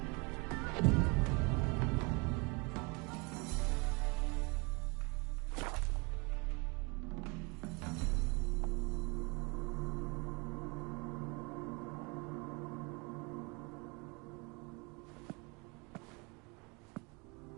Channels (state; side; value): quieter; left; 29.5 dB